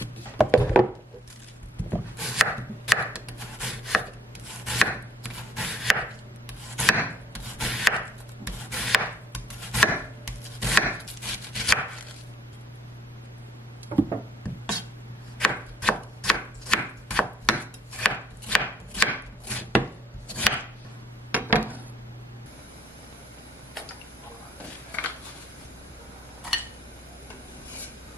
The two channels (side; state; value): both; normal; correlation 0.64